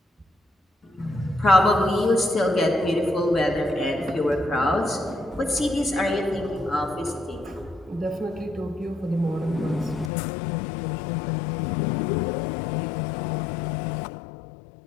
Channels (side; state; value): right; drops out; at 10.1 s